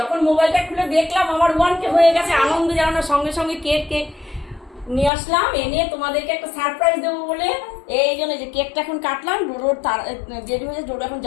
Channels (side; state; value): right; drops out; at 5.1 s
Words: মোবাইলটা খুলে দেখলাম আমার 1K হয়ে গেছে, আনন্দ যেন না, সঙ্গে সঙ্গে কেক নিয়ে আসলাম, এনে তোমাদেরকে একটা সারপ্রাইজ দেবো বলে। এই জন্য যে কেকটা এখন কাটলাম, ডোডোর দেরি হয়েছে, ডোডো এখন